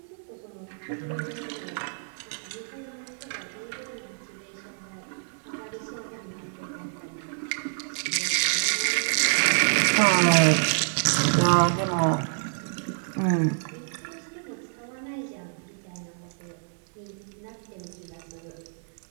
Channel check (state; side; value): silent; left; digital silence